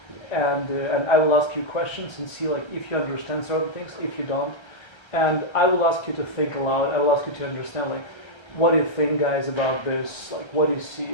And I will ask you questions and see like if you understand certain things, if you don't, and I will ask you to think aloud. I will ask you to understand like what do you think, guys, about this? Like what do you see?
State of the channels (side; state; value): right; late; 1.3 ms